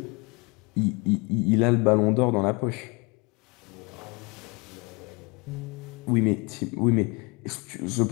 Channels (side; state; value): right; quieter; 29.0 dB